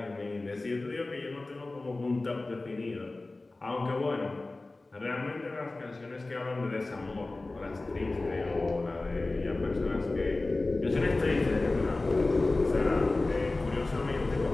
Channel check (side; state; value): right; quieter; 3.1 dB